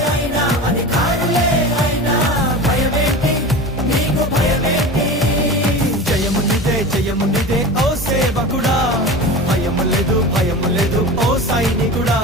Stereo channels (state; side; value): normal; both; correlation 0.31